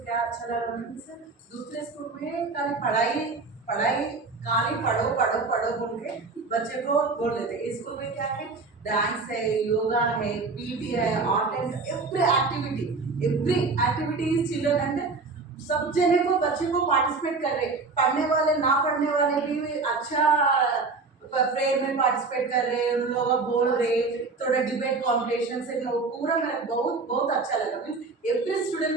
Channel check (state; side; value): quieter; left; 4.1 dB